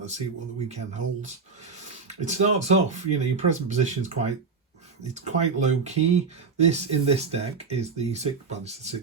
see what the weekend holds. It starts off, your present position is quite low key. In this deck is the it's the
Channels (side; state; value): left; quieter; 5.0 dB